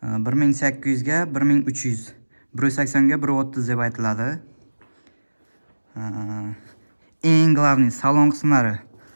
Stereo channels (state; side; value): inverted; both; correlation -1.00